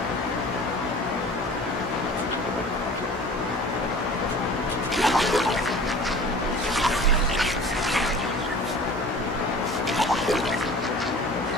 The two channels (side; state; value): both; normal; correlation 0.43